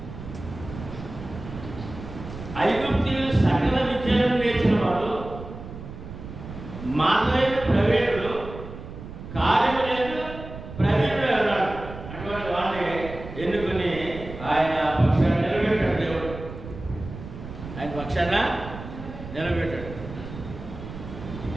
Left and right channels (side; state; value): right; noise; rumble, 12 dB below the sound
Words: ఐగుప్తీయులు సకల విద్యలను నేర్చిన వాడు, మార్గైన ప్రవీణుడు, కార్యములందు ప్రవీణుడు అన్నాడు. అటువంటి వాడిని ఎన్నుకుని ఆయన పక్షాన్ని నిలబెట్టాడు. దేవుడు ఆయన పక్షాన నిలబెట్టాడు.